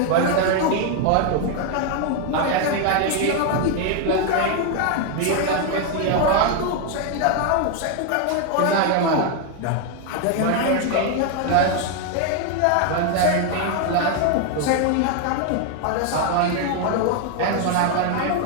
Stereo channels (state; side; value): different; both; correlation 0.01